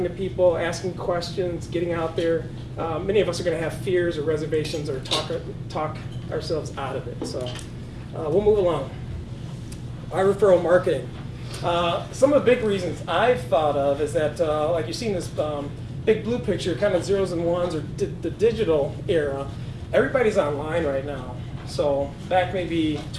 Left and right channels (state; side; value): identical; both; correlation 1.00